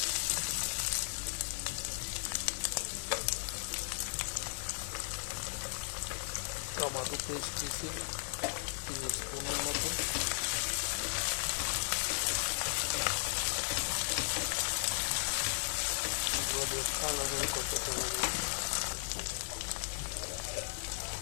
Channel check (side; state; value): right; silent; 54 dB below the other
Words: টমেটো পেস্ট দিচ্ছি 3 স্পুনের মতো। এগুলো দিয়ে ভালো করে কষাতে হবে।